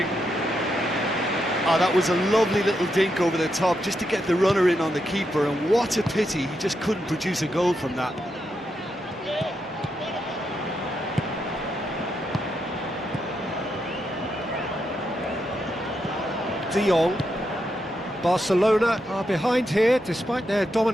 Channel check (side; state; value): both; normal; correlation 0.83